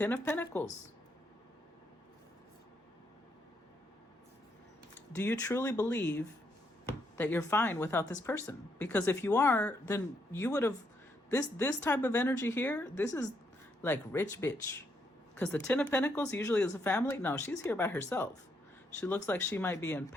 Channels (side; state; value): both; normal; correlation 0.76